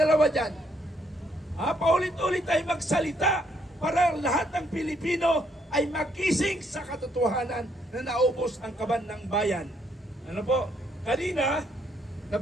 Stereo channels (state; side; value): normal; both; correlation 0.71